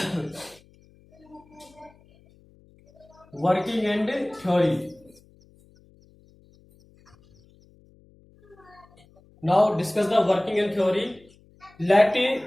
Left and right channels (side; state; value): left; noise; hum, 29 dB below the sound